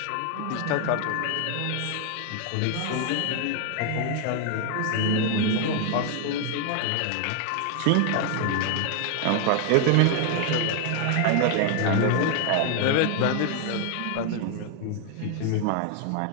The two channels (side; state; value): both; different; correlation 0.00